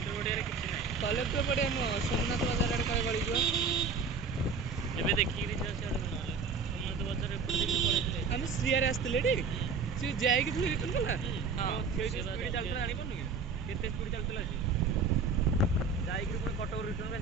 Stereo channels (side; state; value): left; quieter; 4.9 dB